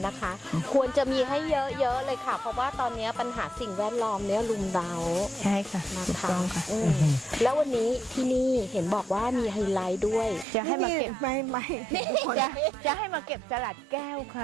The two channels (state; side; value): drops out; left; at 10.5 s